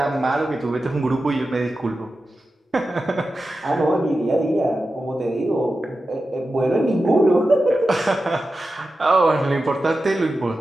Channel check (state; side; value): normal; both; correlation 0.92